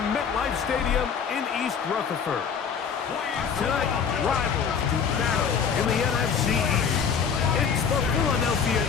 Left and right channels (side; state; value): right; quieter; 6.7 dB